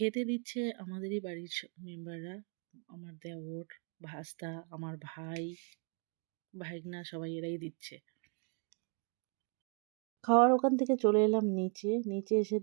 দিচ্ছে আমাদেরই বাড়ির মেম্বাররা। আমার দেওর, ভাস্তা, আমার ভাই, ভাইগনা সবাই এরাই দিচ্ছে। খাওয়ার ওখান থেকে চলে এলাম নিচে। নিচে এসে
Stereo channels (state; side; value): quieter; left; 39.3 dB